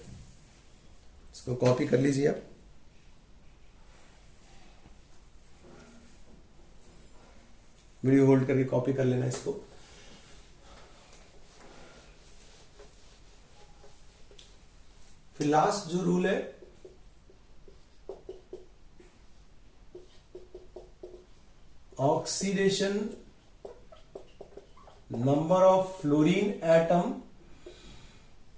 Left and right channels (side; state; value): both; identical; correlation 1.00